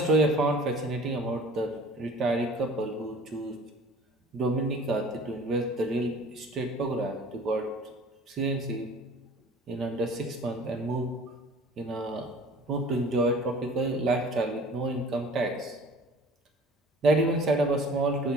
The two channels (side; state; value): both; normal; correlation 0.46